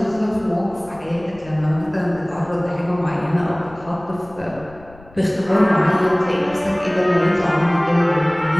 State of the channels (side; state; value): left; noise; rumble, 22 dB below the sound